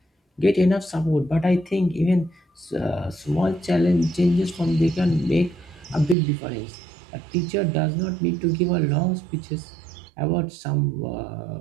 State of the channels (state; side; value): drops out; left; at 6.2 s